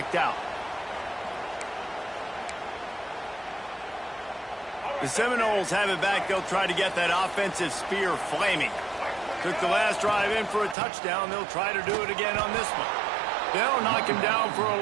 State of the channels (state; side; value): drops out; left; at 10.8 s